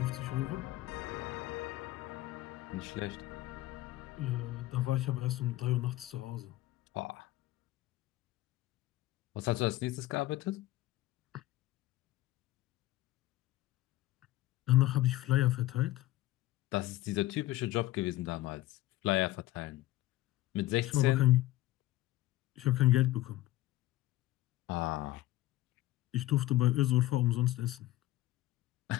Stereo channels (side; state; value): right; quieter; 16.4 dB